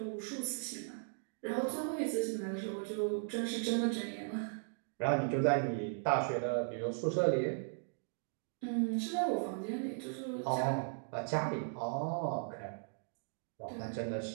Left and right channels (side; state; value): left; silent; digital silence